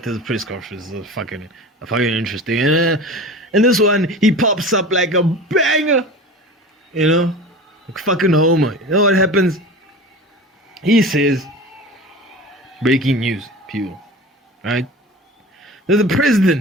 press conference is fucking interesting. And this one, he pops up like a banger, you know, like fucking Homer. You know what happens? He says, breaking news, people, right? There's the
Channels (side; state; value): both; normal; correlation 0.35